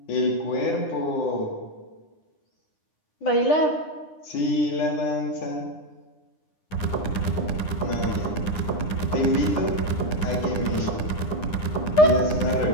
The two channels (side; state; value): right; late; 9.8 ms